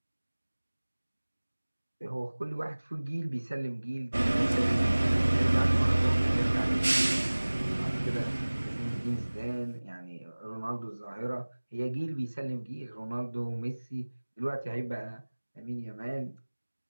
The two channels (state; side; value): inverted; both; correlation -1.00